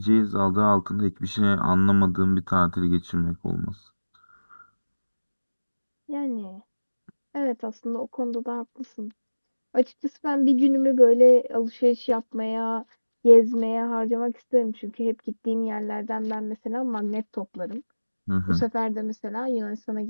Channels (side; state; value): both; inverted; correlation -1.00